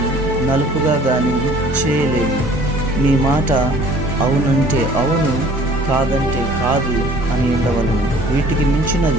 నలుపుగా గాని చేయలేవు. నీ మాట అవునంటే అవును, కాదంటే కాదు అని ఉండవలను. వీటికి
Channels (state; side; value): normal; both; correlation 0.52